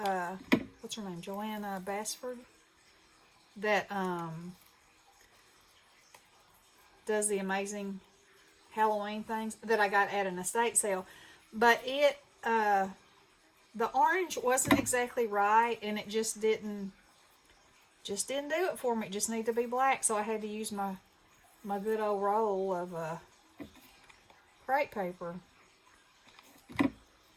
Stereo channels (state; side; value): identical; both; correlation 1.00